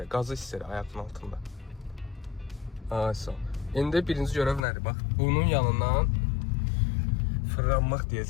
qazı hiss elə ayağının altında. Ayso. İndi birinci görəv nədir? Bax, bunun yanından fırlanmaq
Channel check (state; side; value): drops out; right; at 4.7 s